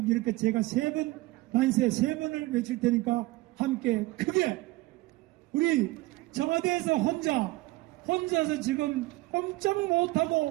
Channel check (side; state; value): left; quieter; 20.2 dB